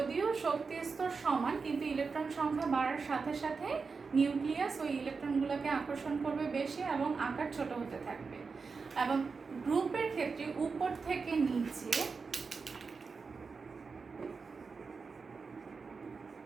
শক্তি স্তর সমান কিন্তু ইলেকট্রন সংখ্যা বাড়ার সাথে সাথে নিউক্লিয়াস ওই ইলেকট্রনগুলোকে আকর্ষণ করবে বেশি এবং আকার ছোট হতে থাকবে। এবং গ্রুপের ক্ষেত্রে উপর থেকে নিচে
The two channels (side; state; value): left; quieter; 4.8 dB